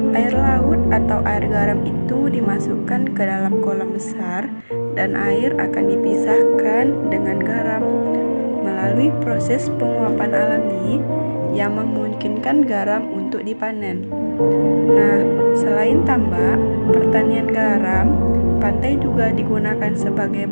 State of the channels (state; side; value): inverted; both; correlation -1.00